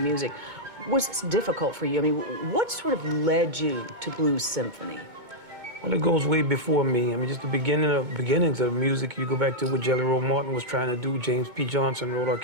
music, was this difficult for you? I mean, what sort of led you to blues symphony? Well, it goes way before me. I mean, just the beginnings of music. You go back to what Jelly Roll Morton was trying to do. James P. Johnson wrote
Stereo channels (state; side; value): late; left; 2.2 ms